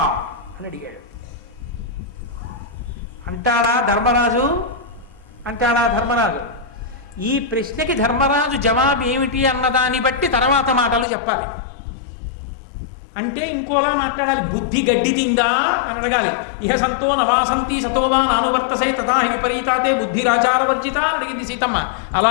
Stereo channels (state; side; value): drops out; right; at 11.1 s